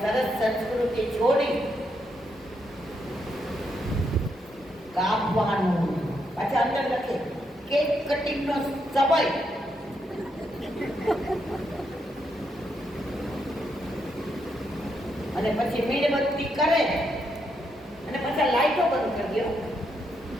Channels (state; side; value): normal; both; correlation 0.79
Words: સરસ સંસ્કૃતિ છોડી કાપવાનું. પાછા અંદર લખે કેક કટિંગ નો સમય. અને પછી મીણબત્તી કરે અને પછી લાઈટો બંધ કરી દો